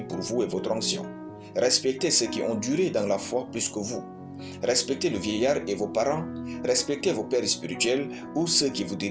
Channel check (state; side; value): identical; both; correlation 1.00